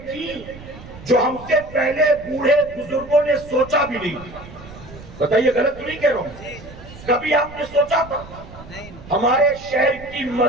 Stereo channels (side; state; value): right; noise; rumble, 17 dB below the sound